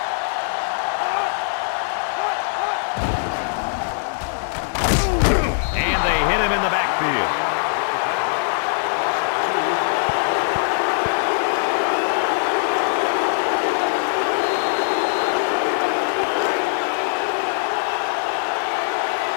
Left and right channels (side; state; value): right; silent; 65 dB below the other